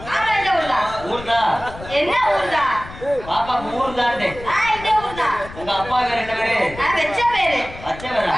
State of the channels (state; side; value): noise; left; rumble, 15 dB below the sound